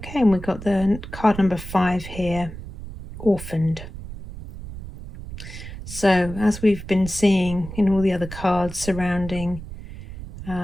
and we've got the card number 5 here, orphaned. So as we've been seeing in all the other cards surrounding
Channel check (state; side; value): noise; right; rumble, 11 dB below the sound